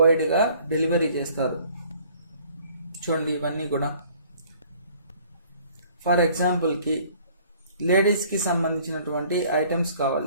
వైడ్గా డెలివరీ చేస్తారు. చూడండి ఇవన్నీ కూడా. ఫర్ ఎగ్జాంపుల్కి లేడీస్కి సంబంధించినటువంటి ఐటమ్స్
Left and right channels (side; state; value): both; inverted; correlation -0.56